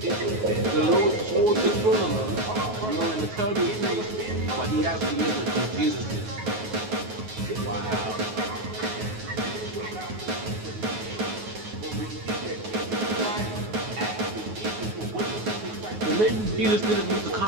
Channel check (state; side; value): late; left; 9.4 ms